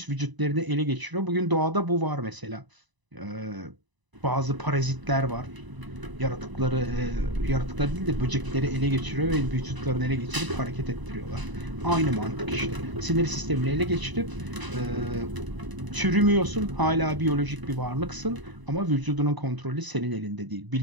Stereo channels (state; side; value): late; left; 1.0 ms